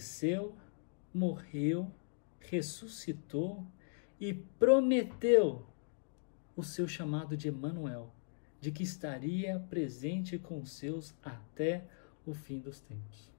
morreu, ressuscitou e prometeu o seu chamado de Emanuel, de que estaria presente com os seus até o fim dos tempos.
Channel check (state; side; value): silent; right; digital silence